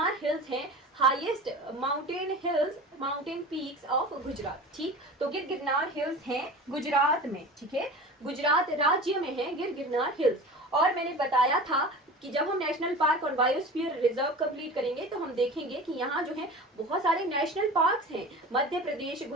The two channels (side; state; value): both; normal; correlation 0.35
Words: हिल्स हैं highest mountain hills, mountain peaks of Gujarat. ठीक, तो गिरगिरनार हिल्स हैं गुजरात में। ठीक है, गुजरात राज्य में है गिरगिरनार हिल्स। और मैंने बताया था कि जब हम नेशनल पार्क और बायोस्फीयर रिजर्व कंप्लीट करेंगे तो हम देखेंगे कि यहाँ जो है बहुत सारे नेशनल पार्क्स हैं, मध्य प्रदेश,